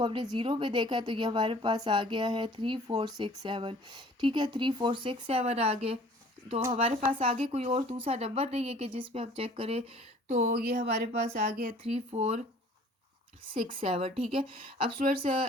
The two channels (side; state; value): both; normal; correlation 0.52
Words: हमने 0 में देखा है, तो ये हमारे पास आ गया है 3467। ठीक है, 3467 आ गए। तो हमारे पास आगे कोई और दूसरा नंबर नहीं है कि जिस पे हम चेक करें, तो ये हमारे पास आ गया 3467। ठीक है, अब स्टूडेंट्स